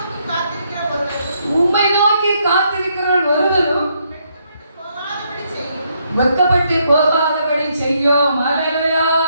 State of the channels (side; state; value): both; inverted; correlation -0.74